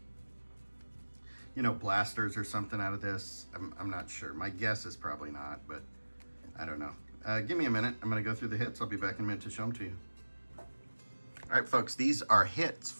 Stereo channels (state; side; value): inverted; both; correlation -1.00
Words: blasters or something out of this. I'm not sure. My guess is probably not, but I don't know. Give me a minute. I'm going to go through the hits. I'll be back in a minute to show them to you. All right, folks, these are hits